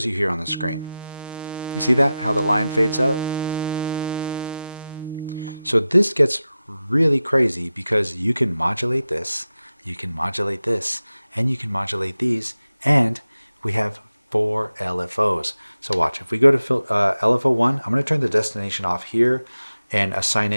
you here on the screen. You see that? How the line fades up? So this gets really crazy because you can modulate this, you can modulate this, and you can modulate these, and we have 4 LFOs. So watch, if we go to LFO 1, I'm going to turn the destination off here and assign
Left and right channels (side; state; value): both; inverted; correlation -0.93